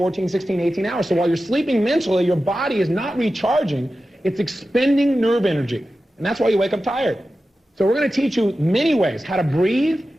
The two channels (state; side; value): normal; both; correlation 0.93